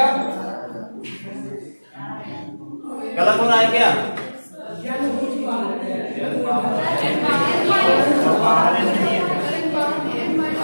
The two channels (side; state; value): both; inverted; correlation -1.00